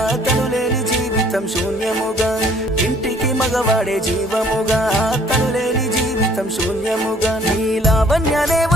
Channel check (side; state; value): both; normal; correlation 0.58